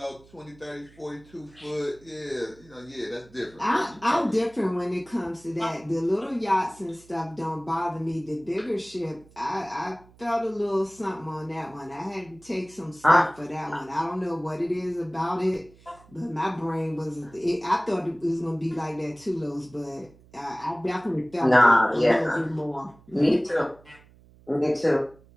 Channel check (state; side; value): noise; right; hum, 26 dB below the sound